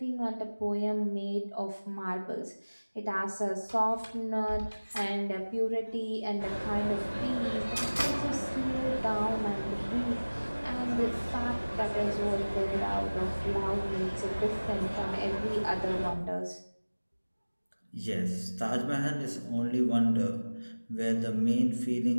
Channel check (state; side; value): inverted; both; correlation -1.00